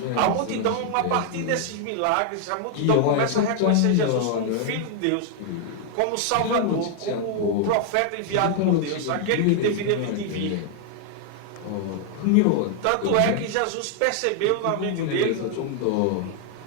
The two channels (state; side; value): different; both; correlation 0.00